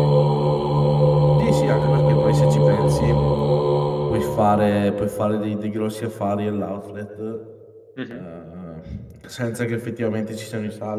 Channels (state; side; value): identical; both; correlation 1.00